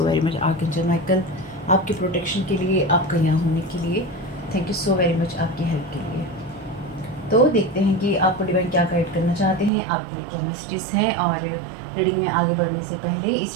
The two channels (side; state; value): left; drops out; at 9.7 s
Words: very much archangel Michael, आपके प्रोटेक्शन के लिए, आपका यहाँ होने के लिए। Thank you so very much आपकी हेल्प के लिए। तो देखते हैं कि आपको डिवाइन क्या गाइड करना चाहते हैं, आपके लिए क्या मैसेजेस हैं। और रीडिंग में आगे बढ़ने से पहले